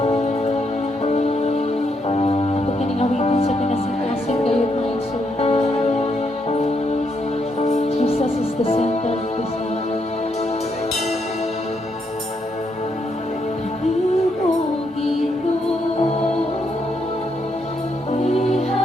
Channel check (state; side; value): normal; both; correlation 0.77